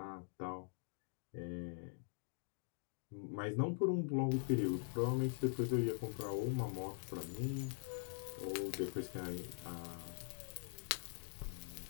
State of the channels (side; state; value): right; silent; digital silence